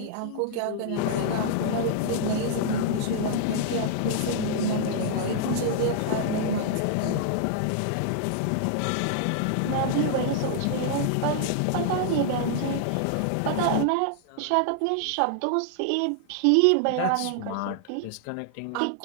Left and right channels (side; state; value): both; different; correlation -0.01